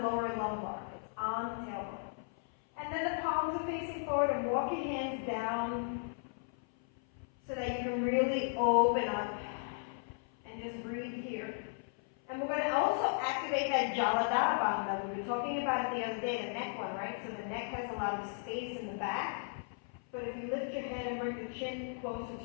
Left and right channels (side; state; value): right; silent; 54 dB below the other